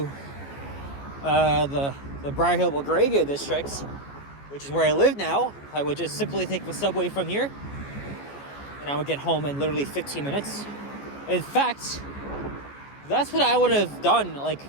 the Briar Hill Belgravia district, which is where I live now, I would just simply take the Subway from here and I would get home in literally 15 minutes. In fact, that's what I would have done, like,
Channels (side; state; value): right; late; 14 ms